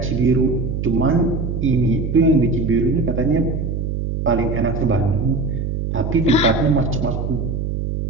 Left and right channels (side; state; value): right; noise; hum, 2 dB below the sound